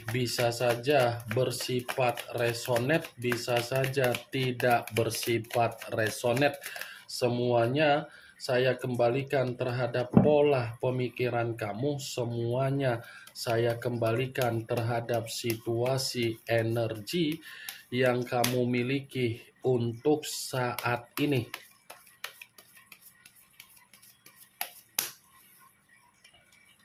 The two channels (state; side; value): identical; both; correlation 1.00